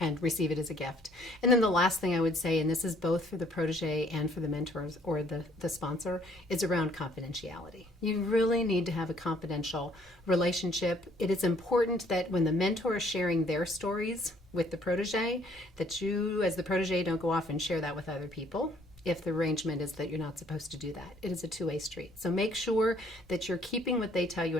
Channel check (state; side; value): normal; both; correlation 0.63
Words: and receive it as a gift. And then the last thing I would say, and this is both for the protege and for the mentors or the sponsor, is around confidentiality. You really need to have a confidential relationship. It is important that when the mentor is sharing their stories with the protege, that you as the protege don't go off and share that with other people if the arrangement is that you're not supposed to do that. It is a 2-way street. So make sure that you're keeping what they tell you